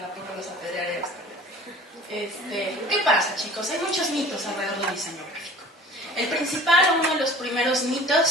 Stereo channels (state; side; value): normal; both; correlation 0.44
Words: apedrearé hasta ¿qué pasa, chicos? Hay muchos mitos alrededor del diseño gráfico. El principal, uno de los primeros